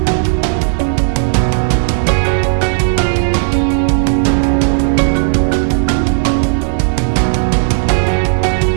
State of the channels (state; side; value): silent; left; 71 dB below the other